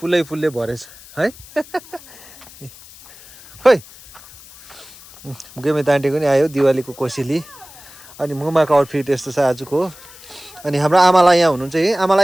भरेछ है खोइ गिमित आन्टीको नि आयो दिवालीको कोसेली अनि मुमाको आउटफिट यस्तो छ आजको अनि हाम्रो आमालाई यहाँ हुनुहुन्छ है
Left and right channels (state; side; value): noise; left; hiss, 20 dB below the sound